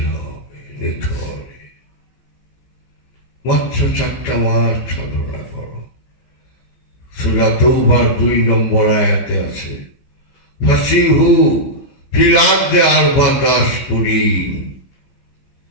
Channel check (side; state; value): right; late; 15 ms